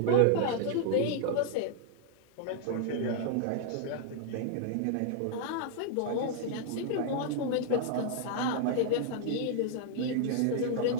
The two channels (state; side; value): different; both; correlation -0.01